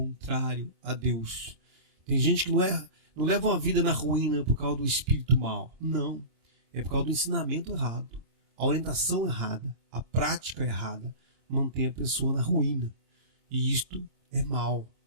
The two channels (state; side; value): late; left; 26 ms